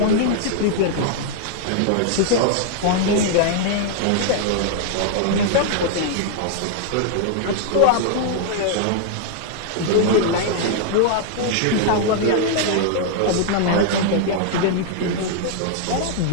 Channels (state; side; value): different; both; correlation 0.00